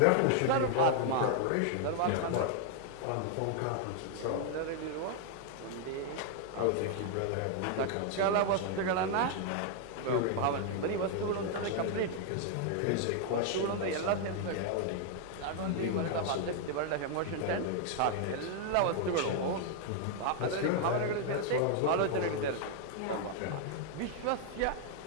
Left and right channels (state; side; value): different; both; correlation 0.00